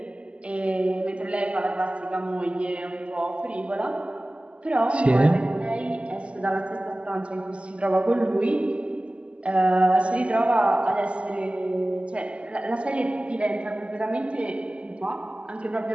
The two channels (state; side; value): late; left; 0.058 ms